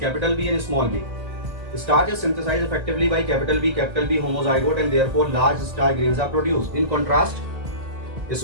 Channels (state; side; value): late; left; 1.9 ms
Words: capital B and small b. Starch is synthesized effectively by capital B homozygote and therefore large starch grains are produced. In contrast,